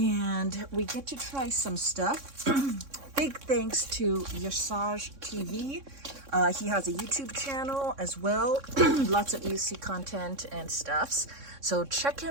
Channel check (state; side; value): late; left; 3.6 ms